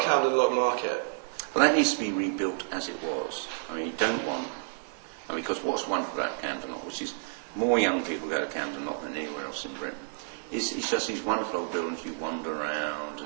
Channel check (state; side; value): silent; left; 58 dB below the other